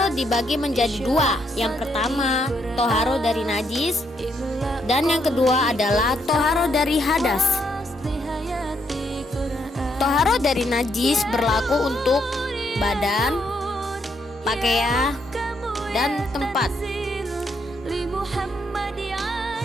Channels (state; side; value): normal; both; correlation 0.75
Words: dibagi menjadi dua. Yang pertama, toharoh dari najis, dan yang kedua adalah toharoh dari hadas. Toharoh dari najis berlaku untuk badan, pakaian, dan tempat.